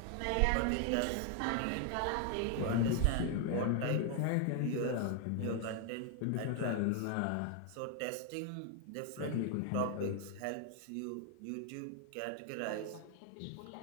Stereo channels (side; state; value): both; different; correlation 0.00